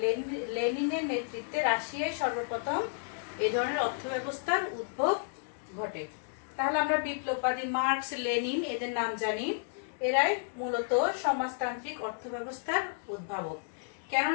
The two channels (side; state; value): right; silent; digital silence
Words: লেনিনের নেতৃত্বে রাশিয়ায় সর্বপ্রথম এই ধরনের অর্থব্যবস্থার উদ্ভব ঘটে। তাহলে আমরা বিপ্লববাদী মার্কস, লেনিন এদের নাম জানি। এরাই মূলত সমাজতান্ত্রিক অর্থব্যবস্থার উদ্ভাবক।